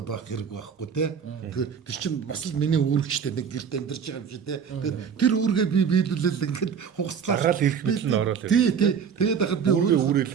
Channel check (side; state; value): left; quieter; 7.1 dB